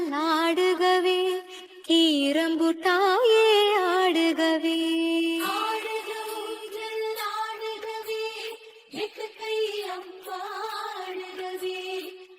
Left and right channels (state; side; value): identical; both; correlation 1.00